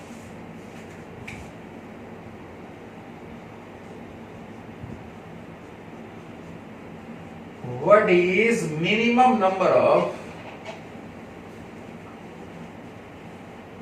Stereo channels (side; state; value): both; identical; correlation 1.00